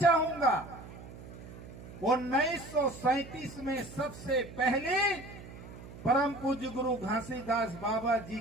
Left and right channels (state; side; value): noise; right; hum, 15 dB below the sound